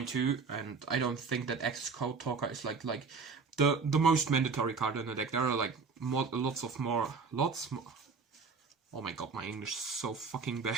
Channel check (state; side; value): quieter; left; 5.0 dB